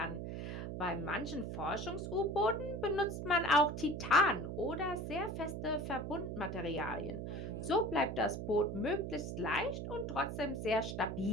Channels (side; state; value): right; noise; hum, 5 dB below the sound